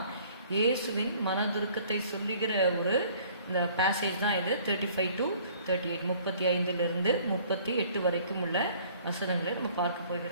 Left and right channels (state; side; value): inverted; both; correlation -0.55